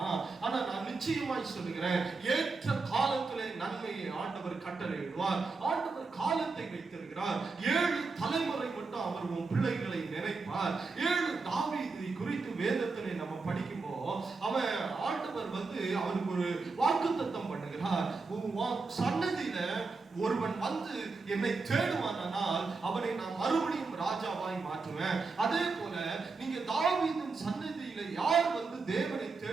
ஆனா நான் நிச்சயமாய் சொல்லுகிறேன், ஏற்ற காலத்திலே நன்மையை ஆண்டவர் கட்டளையிடுவார். ஆண்டவர் காலத்தை வைத்திருக்கிறார். 7 தலைமுறை மட்டும் அவர் உன் பிள்ளைகளை நினைப்பார். 7 தாவீதை குறித்து வேதத்திலே நம்ம படிக்கும்போது அவன் ஆண்டவர் அவனுக்கு ஒரு வாக்குத்தத்தம் பண்ணுகிறார். சன்னதியில ஒருவன் என்னை தேடுவானால் அவனை நான் மறுபடியும் ராஜாவாய் மாற்றுவேன். அதே போல நீங்க தாவீதின் சன்னதியில யார் தேவனை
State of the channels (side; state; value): left; quieter; 4.2 dB